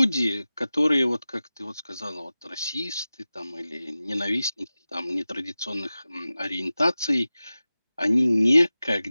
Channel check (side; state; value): both; inverted; correlation -0.95